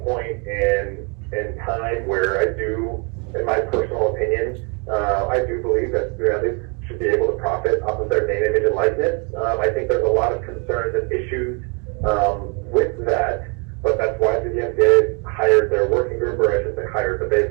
in time where I do, in my personal opinion, I do believe that athletes should be able to profit off of their name, image, and likeness. I think there's a lot of concerns and issues with that, but that's why the NCAA hired their working group, or I should say hired, but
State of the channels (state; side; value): quieter; left; 34.7 dB